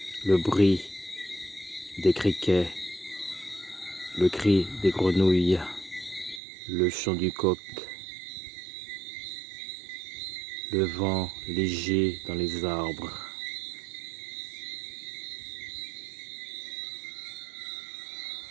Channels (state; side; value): drops out; left; at 6.4 s